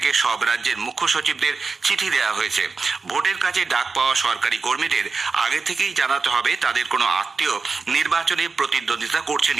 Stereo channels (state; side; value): quieter; left; 4.5 dB